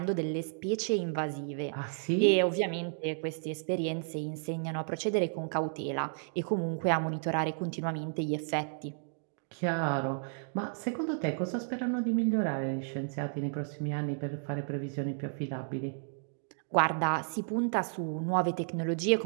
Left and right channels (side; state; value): left; silent; digital silence